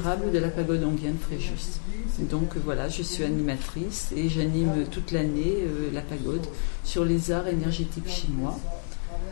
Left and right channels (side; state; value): right; silent; digital silence